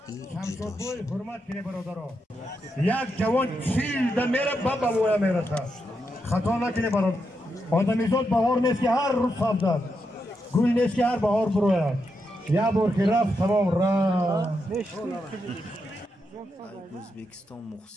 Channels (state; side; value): normal; both; correlation 0.84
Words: jidosh. Hurmat kine barodaro. Yak javon childa mera baba moya merasa. Xato nakine barod. Odamizod bahor neski har roz sabzat. Gul neski har bahor buroyad. Ya borki raf tamom ra. O'zbekiston